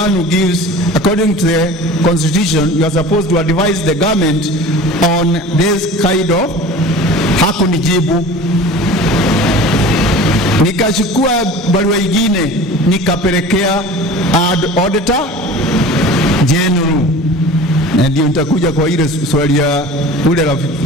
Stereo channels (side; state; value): both; normal; correlation 0.39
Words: who gives, according to the constitution, you are supposed to advise the government on this kind of. Hakunijibu. Nikachukua barua nyingine nikapelekea Auditor General, na ndio nitakuja kwa ile swali ya ule rafiki.